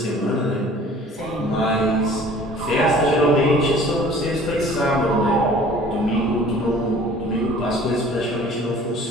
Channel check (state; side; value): normal; both; correlation 0.49